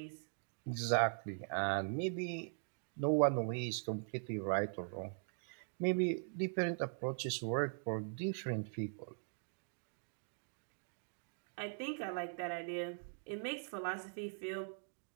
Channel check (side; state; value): left; silent; digital silence